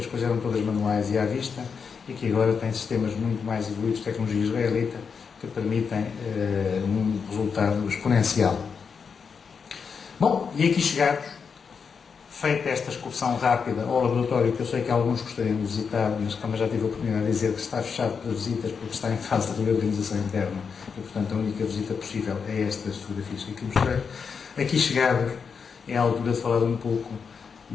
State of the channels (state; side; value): quieter; right; 6.0 dB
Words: coisas eram todas manuais e à vista, e que agora tem sistemas muito mais evoluídos, tecnologia israelita, que permitem um resultado exponencial. Bom, e aqui chegados, feita esta excursão rápida ao laboratório, que eu sei que alguns gostariam de visitar, mas como já tive a oportunidade de dizer que está fechado para visitas porque está em fase de reorganização interna e, portanto, a única visita possível é estas fotografias que aqui mostrei. Aqui chegados, é a altura de falar um pouco